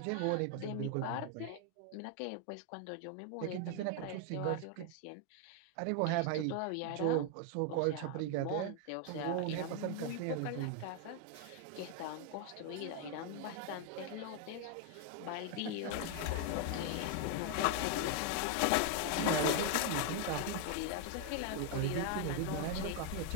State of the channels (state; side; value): different; both; correlation 0.00